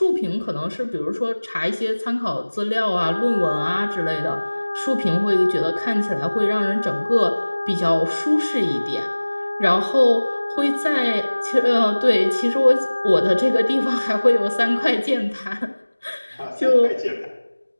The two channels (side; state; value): both; inverted; correlation -1.00